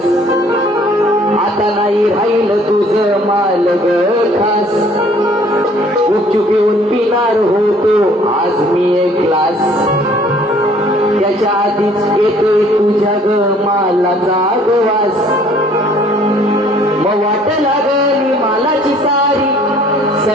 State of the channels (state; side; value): normal; both; correlation 0.57